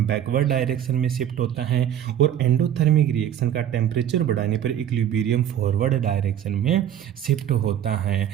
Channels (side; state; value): left; quieter; 10.4 dB